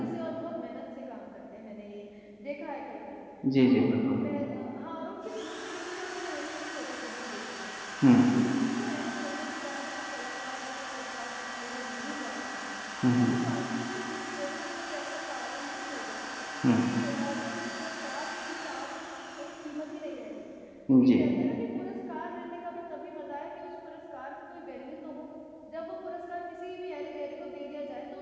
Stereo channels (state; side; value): identical; both; correlation 1.00